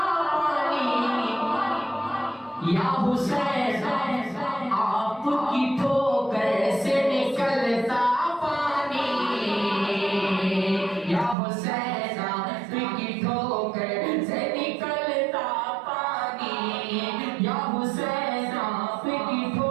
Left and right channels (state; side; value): drops out; left; at 11.4 s